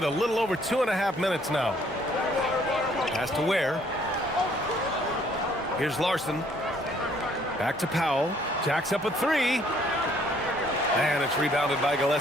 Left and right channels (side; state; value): both; normal; correlation 0.63